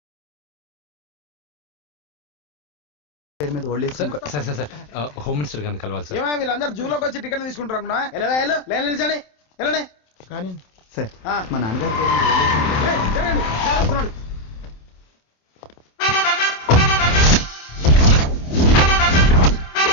హోమ్ మినిస్టర్ గారిని కలవాలి సార్. వీళ్ళందరూ జూలోకి వచ్చి టికెట్ తీసుకుంటారు. కానీ సార్ మా నాన్నగారు వస్తున్నాడు.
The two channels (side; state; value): right; late; 27 ms